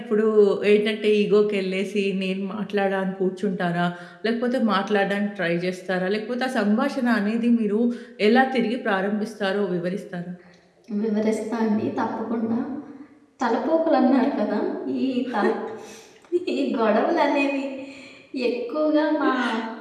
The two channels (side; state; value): both; identical; correlation 1.00